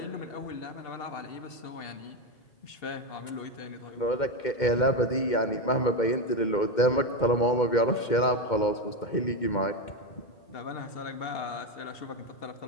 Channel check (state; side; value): late; right; 2.1 ms